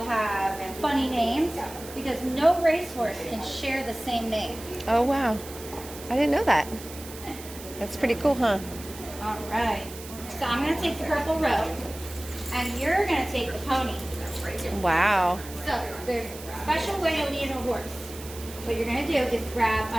have funny names because no racehorse can share the same name. Oh, wow. I didn't know that. That's pretty cool, huh? All right. So I'm going to take the purple robe and you're going to take the pony. Wow. So there's a special way to lead a horse. What you're going to do is grab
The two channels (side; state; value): right; noise; hiss, 15 dB below the sound